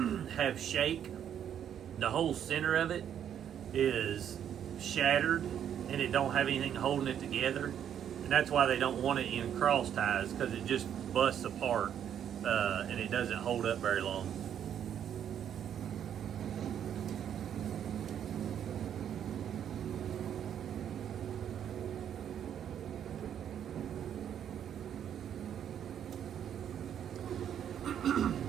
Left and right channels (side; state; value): left; quieter; 9.4 dB